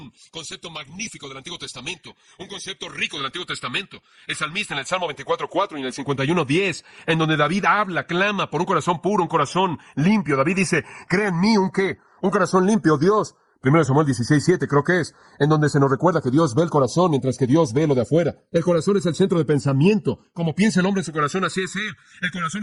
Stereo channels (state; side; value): identical; both; correlation 1.00